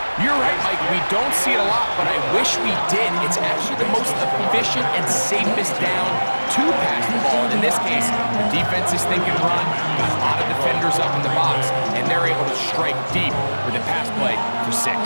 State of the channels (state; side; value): inverted; both; correlation -1.00